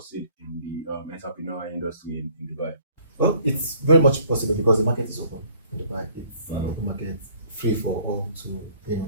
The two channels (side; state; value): both; inverted; correlation -0.57